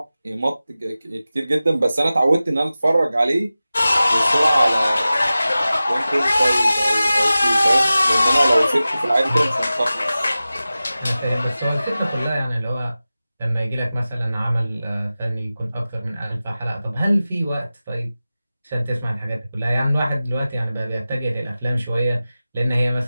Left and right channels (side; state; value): both; inverted; correlation -0.95